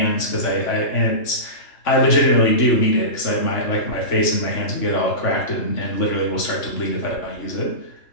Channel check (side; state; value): right; late; 3.5 ms